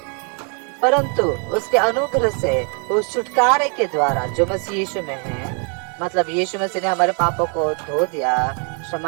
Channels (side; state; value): left; quieter; 37.9 dB